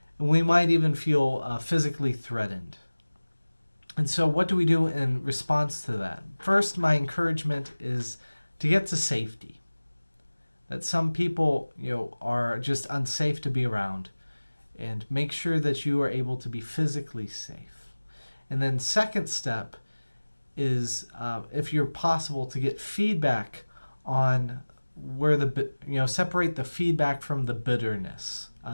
And we might even feel physically threatened. And so what do we do in response to that? First, my encouragement is to get to safety. That some people, are just unsafe to be around. And make sure that you are able to be physically safe. And then second step is, if you're possible, to get feedback on where separate the feedback from the bitterness.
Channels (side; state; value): both; inverted; correlation -1.00